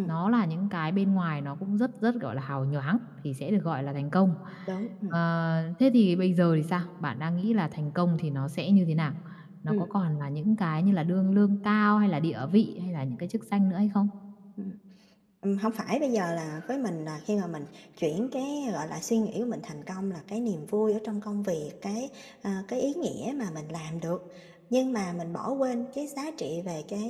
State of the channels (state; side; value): identical; both; correlation 1.00